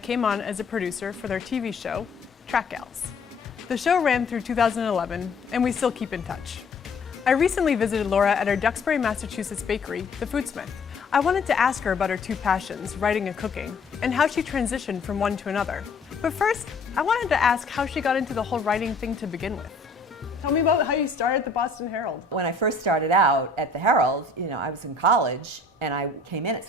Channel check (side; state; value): right; quieter; 3.7 dB